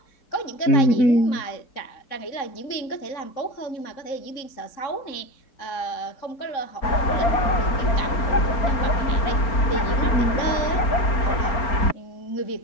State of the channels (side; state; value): right; late; 4.4 ms